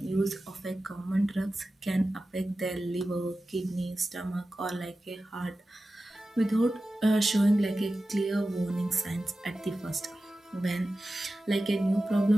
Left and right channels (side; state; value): both; normal; correlation 0.94